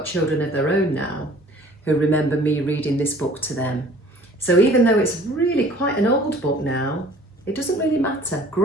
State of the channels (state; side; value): normal; both; correlation 0.52